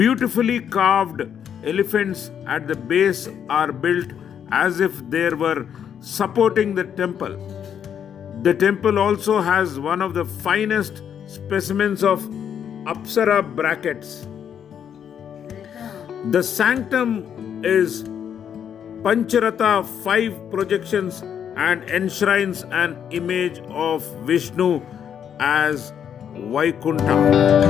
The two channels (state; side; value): quieter; right; 8.5 dB